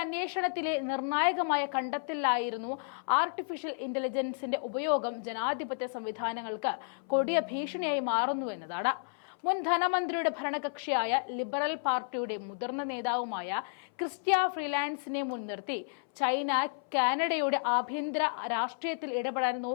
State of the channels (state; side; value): silent; right; 57 dB below the other